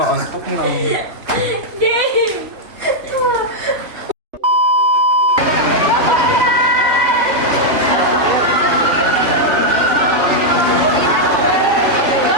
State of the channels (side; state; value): left; late; 3.1 ms